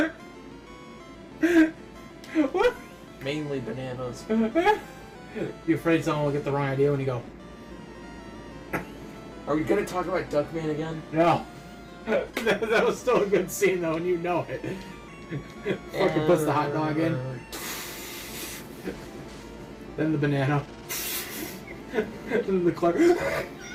What? Mainly bananas. You afraid someone will get the wrong idea when you go, Are we gonna talk about Duckman again? no. That was still a good scene though, and you know it. Fucking puts the hot dog in. Then the banana. Then the Clark.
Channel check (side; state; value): both; identical; correlation 1.00